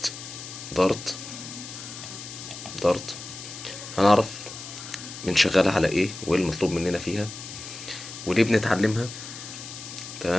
دارت. دارت هنعرف من شغالة على ايه وايه المطلوب مننا فيها وليه بنتعلمها.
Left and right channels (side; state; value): left; noise; hiss, 11 dB below the sound